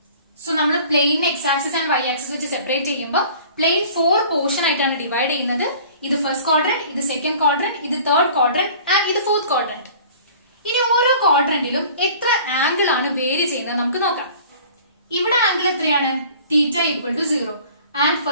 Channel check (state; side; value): inverted; both; correlation -0.47